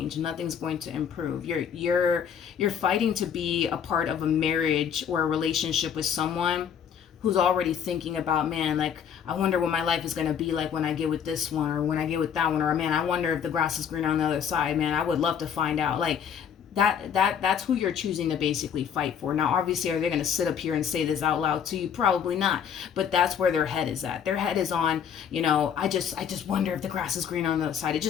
Nothing's going to improve. You're fighting to be a part of a marriage or a relationship with someone who's already thinking about, man, like, I wonder what my life is going to be like when I get with this one, or when I get with that one, or man, I wonder if the grass is green on the other side. Man, I would love to find out. Like, that's who you're choosing to basically fight for. Now, obviously, are they going to sit up here and say this out loud to you? Probably not. But that's where their head is at. Their head is on, you know, I just wonder if the grass is green on the other side. It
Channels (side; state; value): right; quieter; 8.0 dB